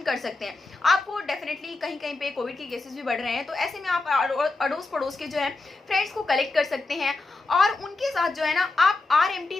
कर सकते हैं। आपको डेफिनेटली कहीं कहीं पे कोविड के केसेस भी बढ़ रहे हैं तो ऐसे में आप अड़ोस पड़ोस के जो है फ्रेंड्स को कलेक्ट कर सकते हैं और उनके साथ जो है ना आप RMT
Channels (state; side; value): quieter; right; 3.4 dB